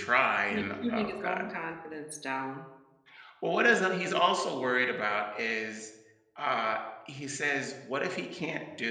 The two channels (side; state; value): both; identical; correlation 1.00